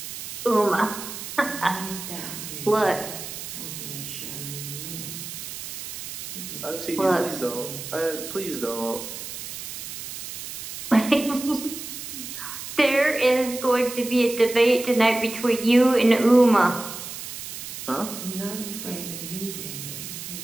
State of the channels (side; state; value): right; noise; hiss, 9 dB below the sound